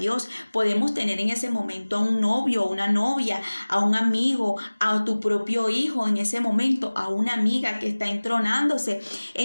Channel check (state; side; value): inverted; both; correlation -1.00